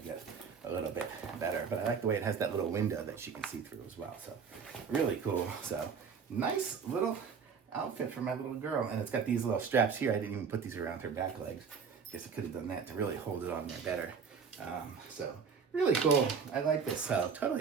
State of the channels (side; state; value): left; quieter; 6.1 dB